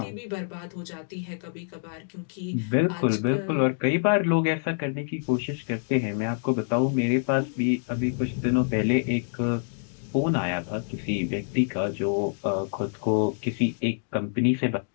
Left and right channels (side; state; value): right; silent; digital silence